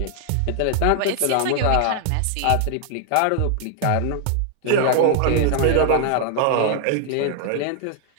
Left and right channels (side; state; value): both; different; correlation 0.00